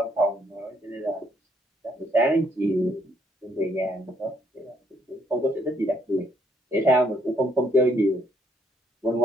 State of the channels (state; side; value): normal; both; correlation 0.70